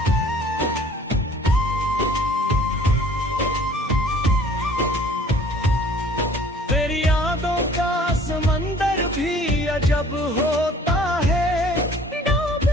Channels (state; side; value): normal; both; correlation 0.53